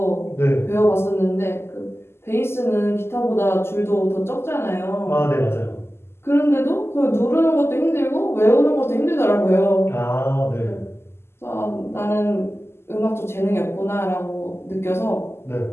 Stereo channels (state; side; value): late; right; 0.12 ms